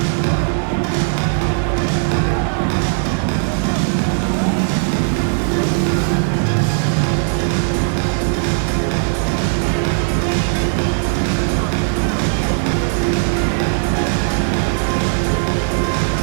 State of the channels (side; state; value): left; silent; digital silence